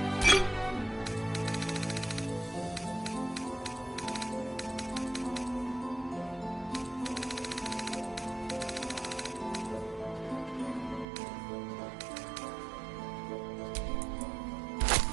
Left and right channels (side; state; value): left; drops out; at 11.1 s